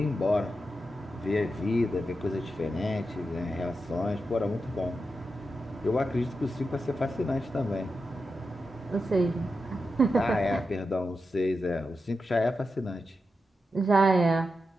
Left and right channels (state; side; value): normal; both; correlation 0.89